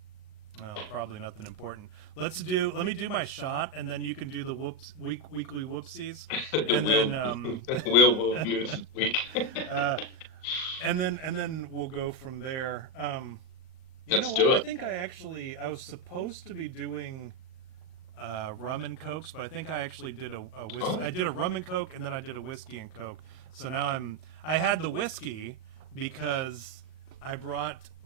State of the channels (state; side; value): late; right; 38 ms